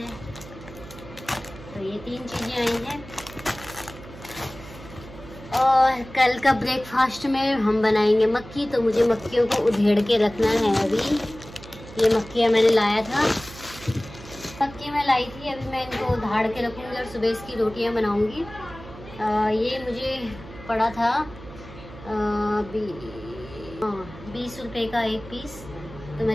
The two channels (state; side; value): noise; right; hum, 16 dB below the sound